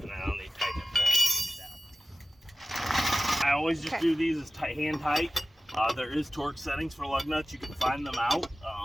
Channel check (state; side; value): normal; both; correlation 0.95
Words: then I'll need to tighten it down. I always just do these as hand tight. There is torque settings for lug nuts. You can find them out.